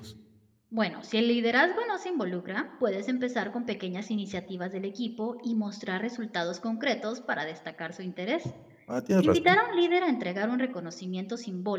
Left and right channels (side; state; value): both; identical; correlation 1.00